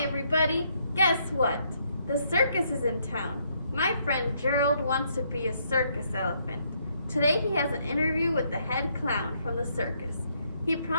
everybody, guess what? The circus is in town. My friend Gerald wants to be a circus elephant. Today he has an interview with the head clown from the circus. He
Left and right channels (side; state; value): both; inverted; correlation -0.72